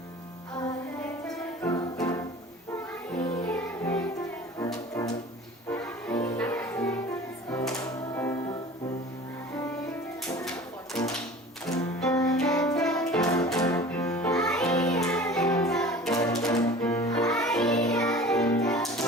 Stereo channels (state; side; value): normal; both; correlation 0.41